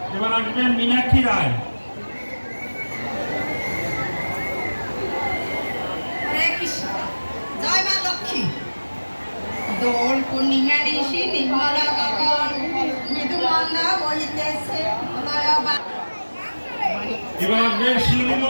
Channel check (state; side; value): inverted; both; correlation -1.00